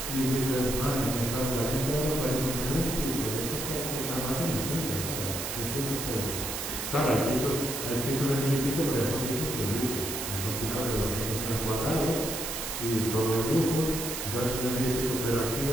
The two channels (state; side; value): noise; right; hiss, 4 dB below the sound